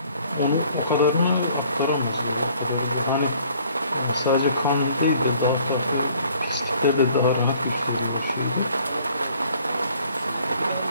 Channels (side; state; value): both; inverted; correlation -0.57